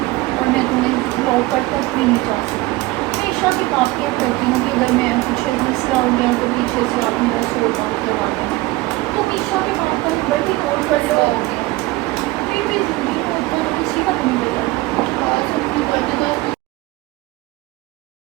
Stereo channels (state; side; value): quieter; left; 19.8 dB